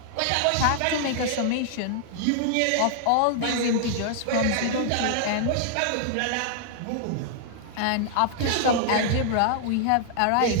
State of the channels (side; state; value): both; different; correlation -0.01